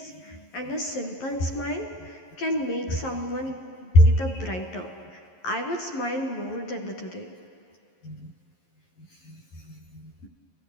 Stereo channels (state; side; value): late; right; 11 ms